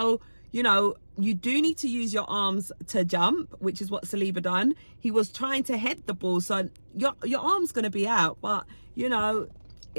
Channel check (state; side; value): inverted; both; correlation -1.00